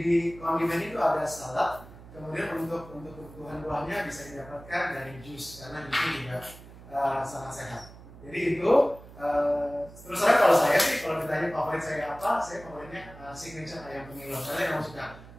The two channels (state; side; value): noise; right; hum, 18 dB below the sound